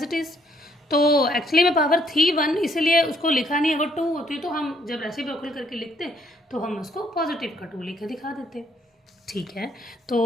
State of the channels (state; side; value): normal; both; correlation 0.68